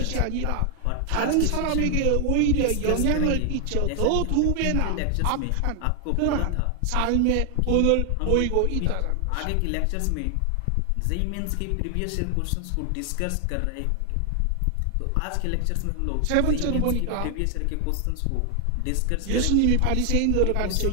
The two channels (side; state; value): both; different; correlation 0.00